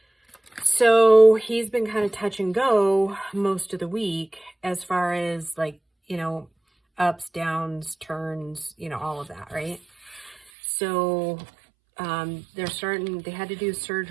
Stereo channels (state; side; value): drops out; left; at 10.4 s